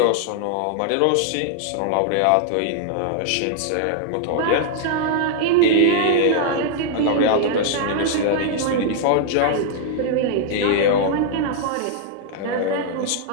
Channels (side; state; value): both; different; correlation -0.01